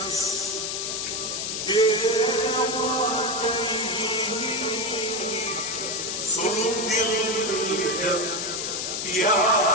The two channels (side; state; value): left; noise; hiss, 3 dB below the sound